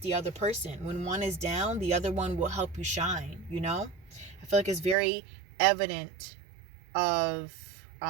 other person. When one is down, the other one will help you shine, you know? I feel like it's very evident of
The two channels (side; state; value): left; drops out; at 5.0 s